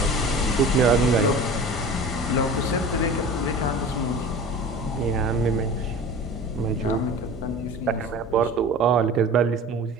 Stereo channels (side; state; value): both; normal; correlation 0.38